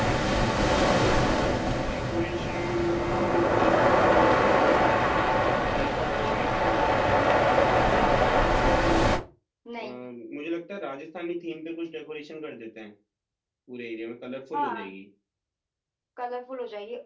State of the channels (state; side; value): identical; both; correlation 1.00